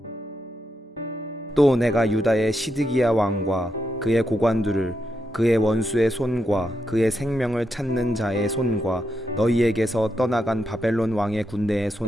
또 내가 유다의 시드기야 왕과 그의 고관들을 그의 원수의 손과 그의 생명을 찾는 자의 손과 너희에게서 떠나간 바벨론 왕의 군대의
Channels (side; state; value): both; normal; correlation 0.84